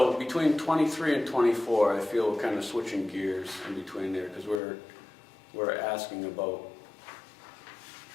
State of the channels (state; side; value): drops out; right; at 4.6 s